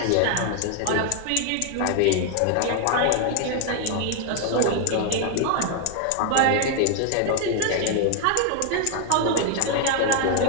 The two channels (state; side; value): different; both; correlation 0.00